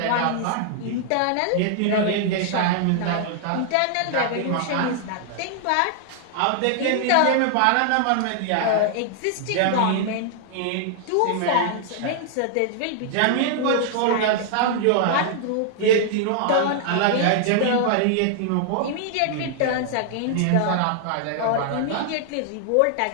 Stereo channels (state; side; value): different; both; correlation -0.01